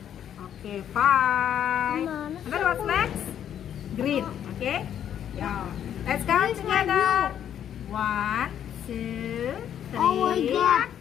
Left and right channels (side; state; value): right; quieter; 9.7 dB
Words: Okay, 5. And then what's next? Green. Okay. Yeah. Let's count together. 1, 2, 3, Oh my God.